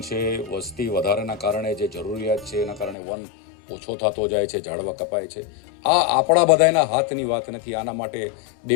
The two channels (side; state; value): right; drops out; at 3.0 s